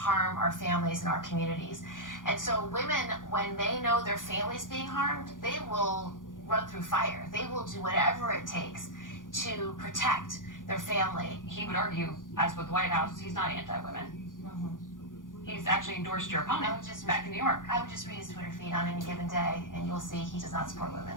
our families and our communities. And so women, when they know their family's being harmed, they will run through fire. They will do whatever it takes to protect their family. He would argue, as with the White House, he's not anti-women. He's actually endorsed your opponent back in New York. I would just read his Twitter feed on any given day, and you'll see he does not support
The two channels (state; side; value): late; right; 0.89 ms